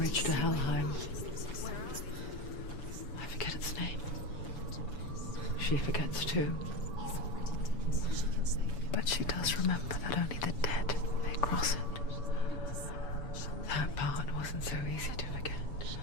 to Helheim. I forget its name. She forgets too. He's already dead. She can save him. But she does remember that only the dead may cross it. That part wasn't so easy to forget.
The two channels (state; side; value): late; right; 7.0 ms